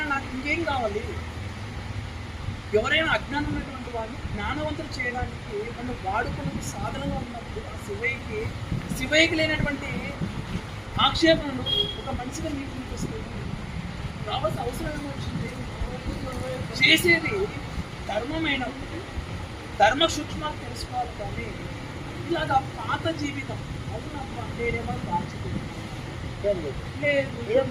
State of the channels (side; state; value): both; identical; correlation 1.00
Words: నాకు ఇంకేం కావాలి? ఎవరైనా అజ్ఞానం ఉన్నటువంటి వాడిని జ్ఞానవంతులు చేయడానికి నన్ను వాడుకున్న సాధనంగా ఉన్నప్పుడు ఆ శివయ్యకి లేనటువంటి ఆక్షేపణలు ఒక మనిషిగా మీకు అనిపిస్తుంది. రావాల్సిన అవసరం ఏమొచ్చింది? చేసేది ధర్మమైనప్పుడు ధర్మ సూక్ష్మాలు తెలుసుకోవాలి. కానీ ఇలాగా పాత జీవితం అవునమ్మా నేనేమో దాచిపోయింది